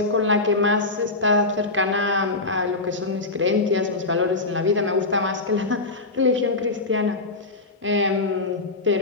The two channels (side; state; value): right; quieter; 3.3 dB